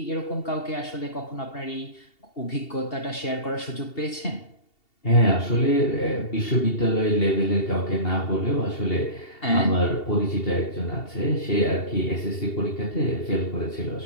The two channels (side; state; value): right; late; 2.7 ms